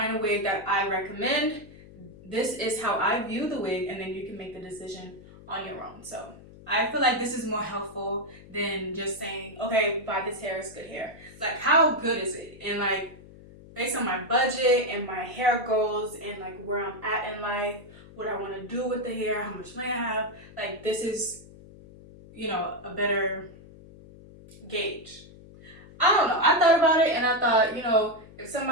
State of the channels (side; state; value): left; noise; hum, 20 dB below the sound